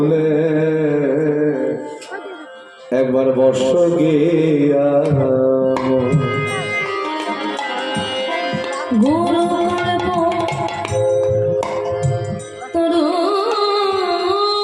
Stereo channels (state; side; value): identical; both; correlation 1.00